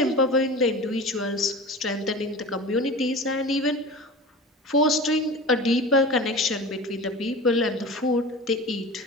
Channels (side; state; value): both; normal; correlation 0.33